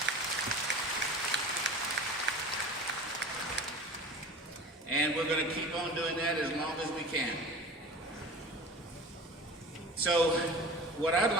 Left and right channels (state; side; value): normal; both; correlation 0.37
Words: And we're going to keep on doing that as long as we can. So what I'd